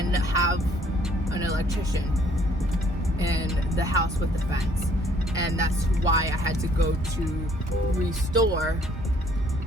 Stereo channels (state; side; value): normal; both; correlation 0.62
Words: have an electrician in the house with the fence, and that's why I had to go to Restore,